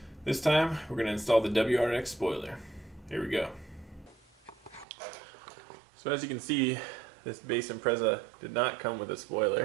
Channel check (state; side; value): drops out; left; at 4.9 s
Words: This time, we're going to install the WRX spoiler. Here we go. So as you can see, this base Impreza did not come with a